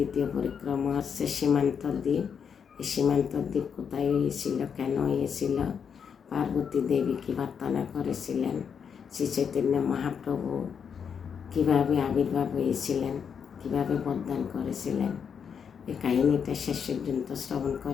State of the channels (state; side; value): quieter; right; 7.1 dB